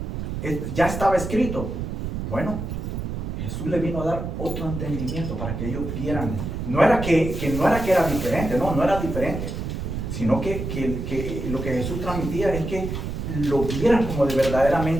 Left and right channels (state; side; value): noise; right; rumble, 4 dB below the sound